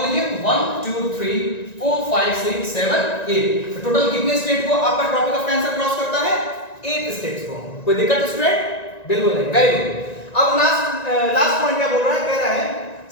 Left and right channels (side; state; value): right; late; 1.9 ms